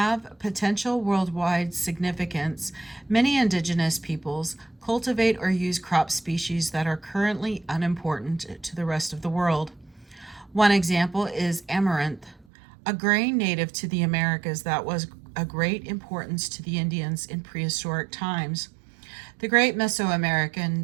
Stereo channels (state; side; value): drops out; left; at 12.5 s